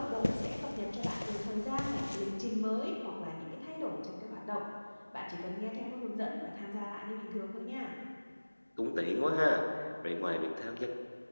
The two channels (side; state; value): both; inverted; correlation -1.00